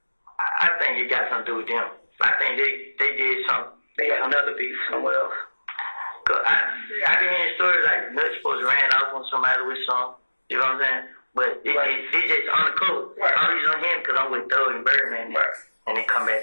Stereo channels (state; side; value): inverted; both; correlation -1.00